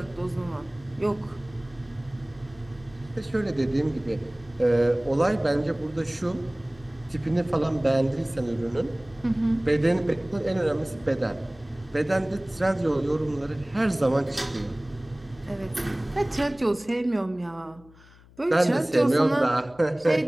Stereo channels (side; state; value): left; noise; hum, 25 dB below the sound